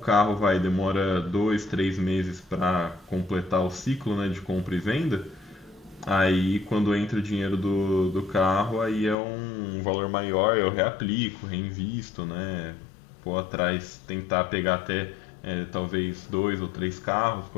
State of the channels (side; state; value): right; drops out; at 9.2 s